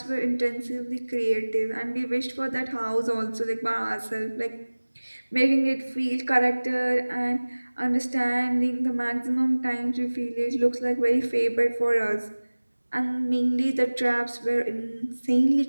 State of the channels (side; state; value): both; inverted; correlation -1.00